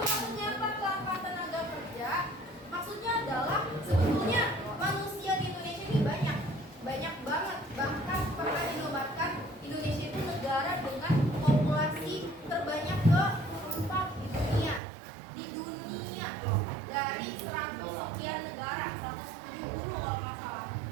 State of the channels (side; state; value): left; drops out; at 14.8 s